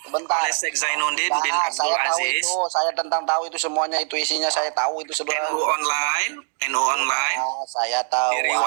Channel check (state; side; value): silent; left; 62 dB below the other